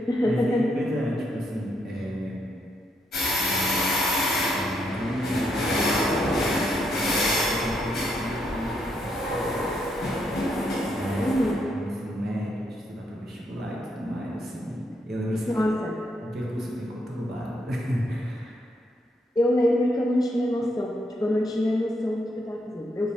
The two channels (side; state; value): both; normal; correlation 0.77